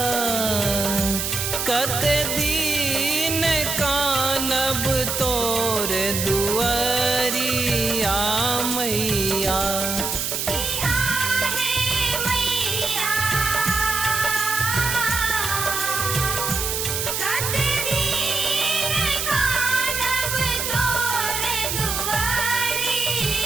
कते दिन कानब तोर दुआरिया मैया। किया है मैया कते दिन कानब तोर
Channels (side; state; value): right; noise; hiss, 1 dB below the sound